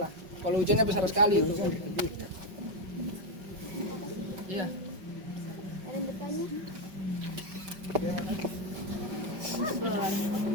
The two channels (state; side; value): late; left; 5.4 ms